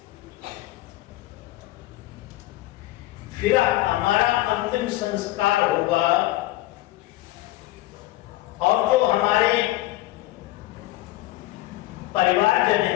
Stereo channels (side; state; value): right; quieter; 17.3 dB